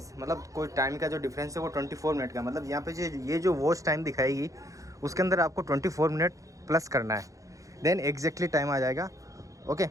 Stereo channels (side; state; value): left; late; 0.16 ms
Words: मतलब कोई टाइम का जो डिफरेंस है वो 24 मिनट का, मतलब यहाँ पे ये जो वॉच टाइम दिखाएगी उसके अंदर आपको 24 मिनट प्लस करना है, देन एग्जैक्टली टाइम आ जाएगा। Okay,